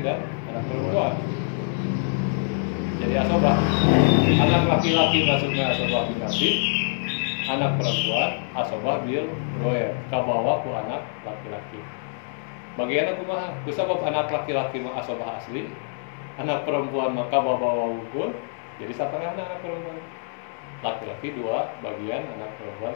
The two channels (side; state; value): right; silent; digital silence